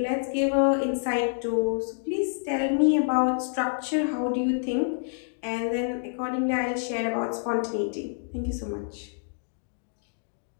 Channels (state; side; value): silent; right; digital silence